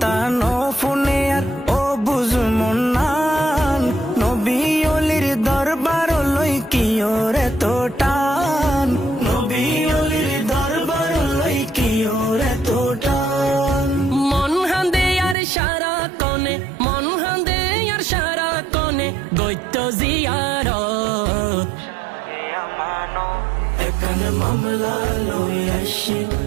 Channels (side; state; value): left; drops out; at 15.4 s